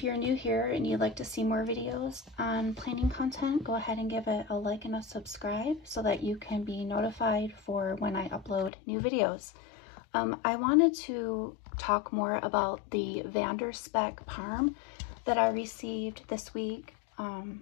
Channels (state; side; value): drops out; right; at 8.7 s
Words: you're new here and you'd like to see more videos on planning content, go ahead and give it a like and a subscribe so that you can be notified for when I upload new videos. I wanted to talk more about the VanderSpek Parm that I received this week.